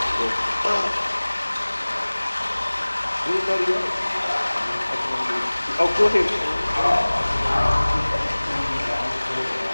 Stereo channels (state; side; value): inverted; both; correlation -1.00